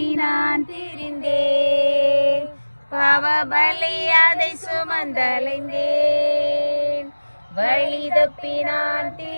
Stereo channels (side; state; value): both; inverted; correlation -1.00